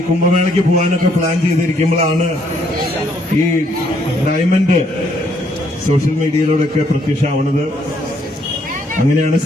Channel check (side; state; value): both; normal; correlation 0.69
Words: കുംഭമേളയ്ക്ക് പോകാനൊക്കെ പ്ലാൻ ചെയ്തിരിക്കുമ്പോഴാണ് ഈ ഡയമണ്ട് സോഷ്യൽ മീഡിയയിലൂടെയൊക്കെ പ്രത്യക്ഷമാവുന്നത്. അങ്ങനെയാണ്